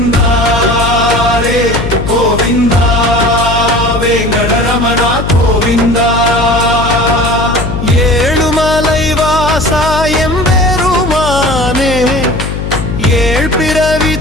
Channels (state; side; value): noise; left; hum, 5 dB below the sound